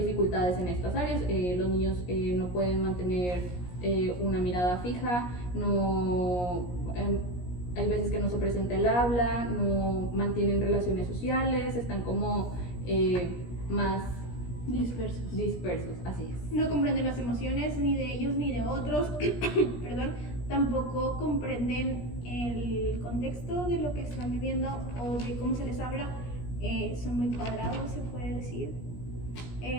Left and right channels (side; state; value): right; late; 17 ms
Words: en estas áreas. Los niños no pueden mantener una mirada fija, hay veces que no se presenta el habla, no mantienen relaciones sociales, están como más dispersos, así es. No comprenden las emociones ni de ellos ni de otros, perdón, tampoco comprenden el contexto de lo que están viviendo o de cómo se les habla. Son muy cuadrados, se puede decir.